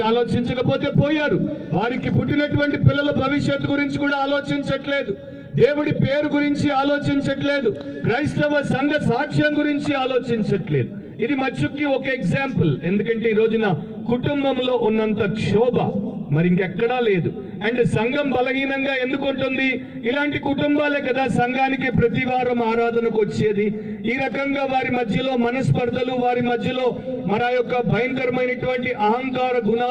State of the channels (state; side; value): identical; both; correlation 1.00